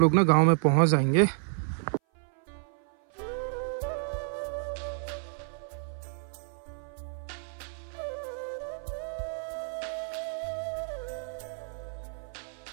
ना गाँव में पहुँच जाएंगे।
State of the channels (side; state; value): left; silent; 56 dB below the other